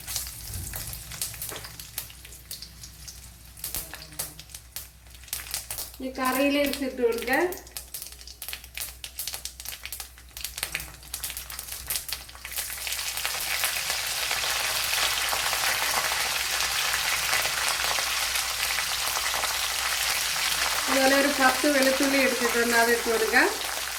ഈ കറിയിലേക്ക് ഇട്ട് കൊടുക്കാം. അതുപോലെ ഒരു 10 വെളുത്തുള്ളി എടുത്തിട്ടുണ്ട്, അതിട്ട് കൊടുക്കാം.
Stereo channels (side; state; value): both; identical; correlation 1.00